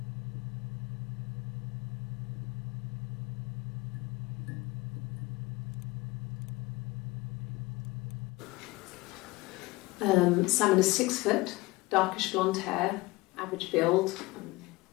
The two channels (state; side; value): quieter; right; 21.4 dB